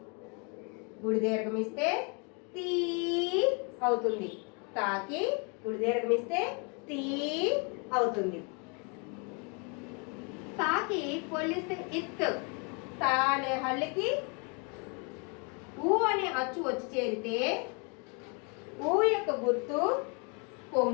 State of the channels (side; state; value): right; quieter; 34.6 dB